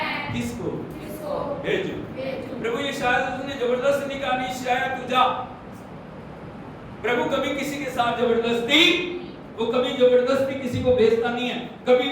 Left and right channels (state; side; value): identical; both; correlation 1.00